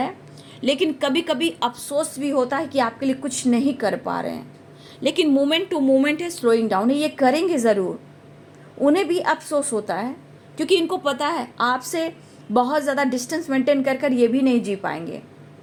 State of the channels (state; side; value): identical; both; correlation 1.00